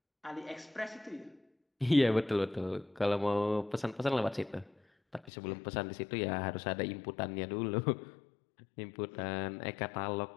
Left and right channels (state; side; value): drops out; right; at 5.3 s